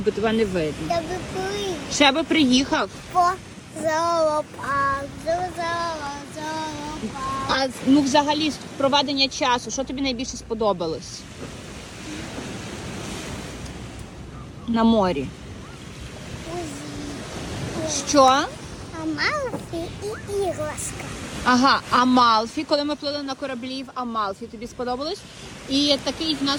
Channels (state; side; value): identical; both; correlation 1.00